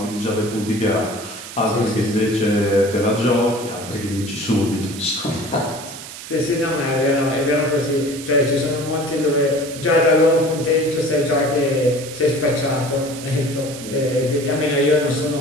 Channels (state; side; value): noise; right; hiss, 12 dB below the sound